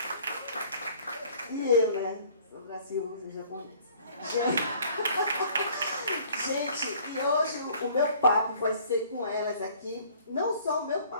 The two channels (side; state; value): both; inverted; correlation -0.54